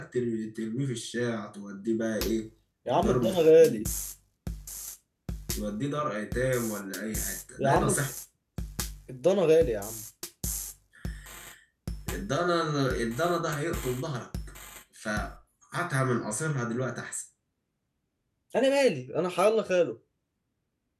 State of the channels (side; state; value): both; identical; correlation 1.00